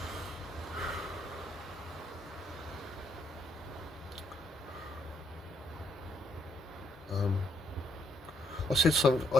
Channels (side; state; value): both; normal; correlation 0.72